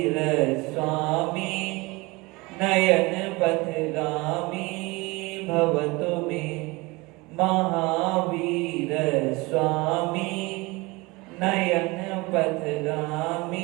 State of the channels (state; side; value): quieter; left; 24.0 dB